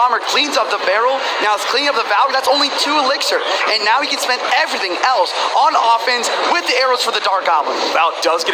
cleans up the barrel. Now it's cleaning up the Valkyrie. That's only 2 elixir. And now he can spend everything else on offense with the arrows for the Dark Goblin. Val does get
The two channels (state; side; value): identical; both; correlation 1.00